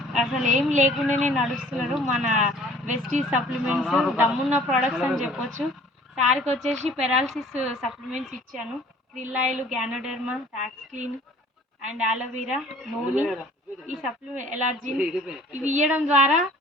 అసలు ఏం లేకుండానే నడుస్తున్నాడు. మన వెస్టీజ్ సప్లిమెంట్స్ దమ్మున్న ప్రోడక్ట్స్ అని చెప్పొచ్చు. సార్కి వచ్చేసి పెరాలసిస్ సప్లిమెంట్స్ ఇచ్చాను. క్రిల్లాయిల్, గ్యానోడెర్మా, టాక్స్క్లీన్ అండ్ ఆలోవెరా, నూనె, ఈ సప్లిమెంట్ ఎలర్జీ ఇవి ఇవ్వడం ద్వారా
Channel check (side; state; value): both; normal; correlation 0.52